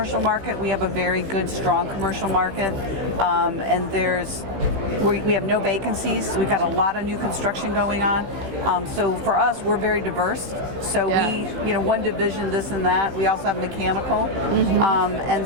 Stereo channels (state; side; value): late; left; 15 ms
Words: market, we have a very good, strong commercial market, and we have no vacancies. We've got a lot of new construction going on. So for us, we're very diverse. So we, one division, this and that. We also have mechanical,